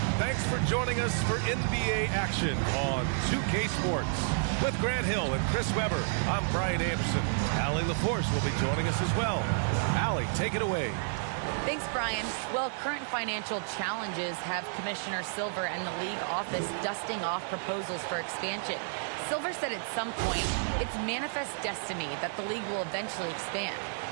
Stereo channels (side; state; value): left; silent; digital silence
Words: Thanks for joining us for NBA action on 2K Sports. With Grant Hill and Chris Webber, I'm Brian Anderson. Allie LaForce will be joining us as well. Allie, take it away. Thanks, Brian. Well, current financial challenges have Commissioner Silver and the league office dusting off proposals for expansion. Silver said at some point, it's manifest destiny that the league will eventually expand.